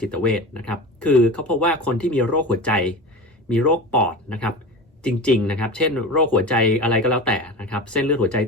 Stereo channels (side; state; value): both; normal; correlation 0.30